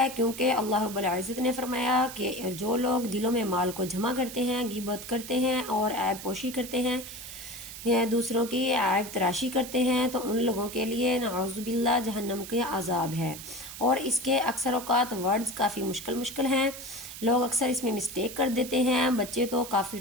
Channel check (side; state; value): right; noise; hiss, 11 dB below the sound